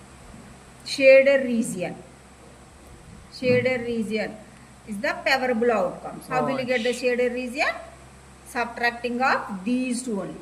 Shaded region. Shaded region is the favorable outcomes. How will you get the shaded region? Subtracting of these two only.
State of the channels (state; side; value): identical; both; correlation 1.00